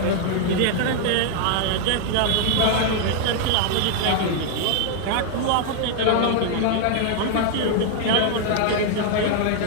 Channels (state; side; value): different; both; correlation 0.00